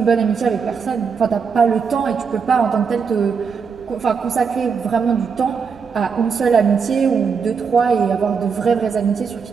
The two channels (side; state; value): left; quieter; 5.9 dB